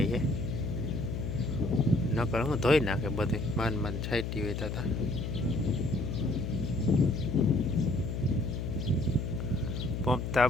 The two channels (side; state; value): left; noise; hum, 3 dB below the sound